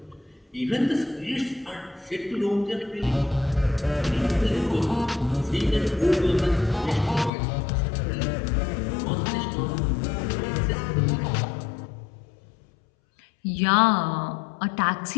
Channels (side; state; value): right; drops out; at 7.3 s